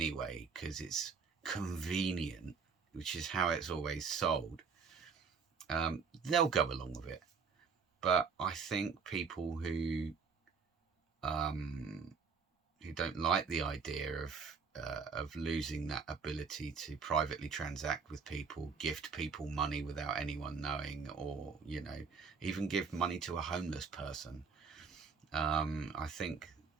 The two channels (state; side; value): quieter; left; 5.5 dB